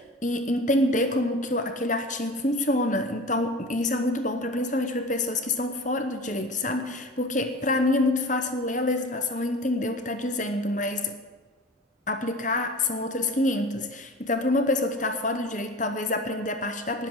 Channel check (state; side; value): normal; both; correlation 0.36